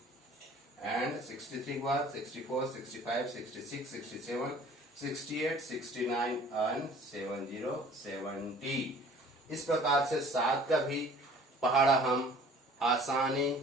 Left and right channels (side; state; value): both; normal; correlation 0.51